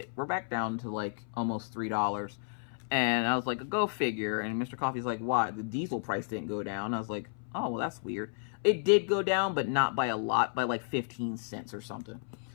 We're back down to like almost $3. And I was like, go figure. And Mr. Coffee's like, why? The diesel price didn't go down. I was like, oh, well, that's weird. It did go down, but not by a lot, by like 15 cents or something.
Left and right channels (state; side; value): silent; right; 56 dB below the other